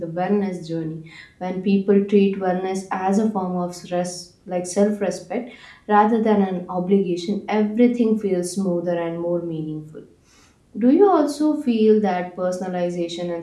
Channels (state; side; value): identical; both; correlation 1.00